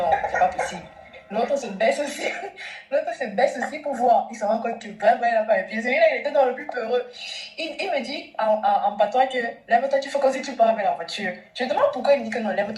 c'est pas possible. L'autre se baisse aussi pour voir. Il se rend compte que vraiment il n'a pas les pieds. Celui-là, il était dans le plus peureux. Il me dit en patois que lève-toi, tu fais comme si tu pars avec la voiture. Je me demande pourquoi il me dit que non,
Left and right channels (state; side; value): identical; both; correlation 1.00